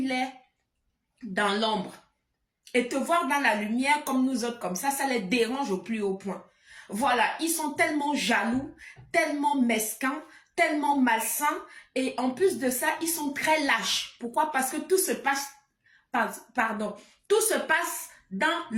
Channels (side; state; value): both; identical; correlation 1.00